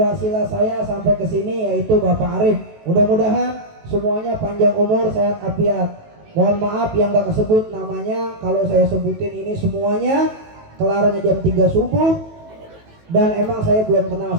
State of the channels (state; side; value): late; left; 18 ms